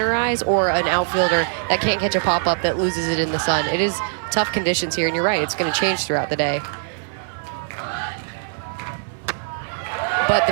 eyes, or an outfielder that can't catch a pop-up that loses it in the sun. It is tough conditions here, and you're right, it's going to change throughout the day. But the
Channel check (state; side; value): silent; left; digital silence